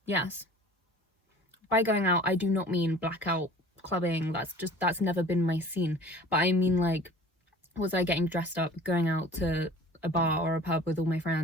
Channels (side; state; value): both; normal; correlation 0.45